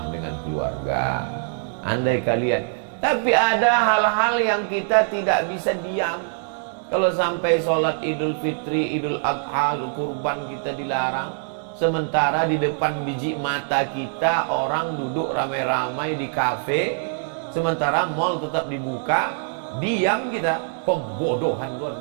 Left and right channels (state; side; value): silent; left; digital silence